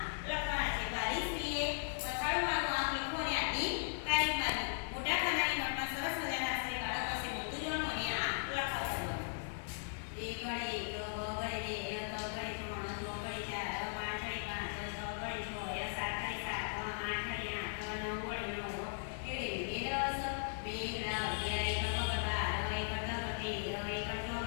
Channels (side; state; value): right; silent; digital silence